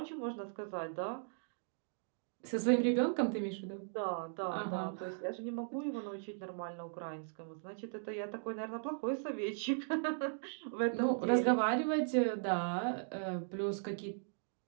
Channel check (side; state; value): left; silent; digital silence